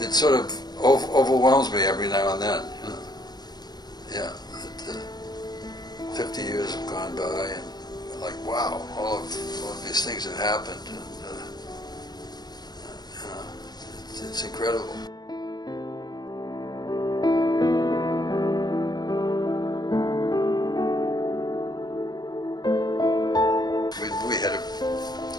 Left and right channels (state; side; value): late; right; 0.20 ms